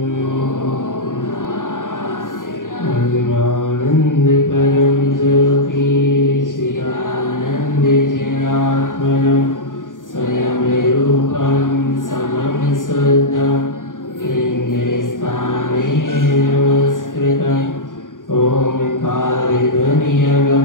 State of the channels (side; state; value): right; late; 0.88 ms